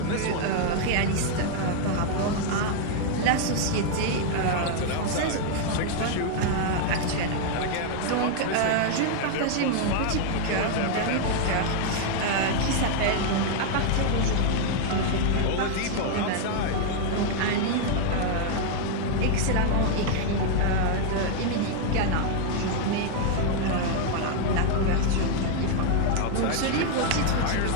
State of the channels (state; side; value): different; both; correlation 0.00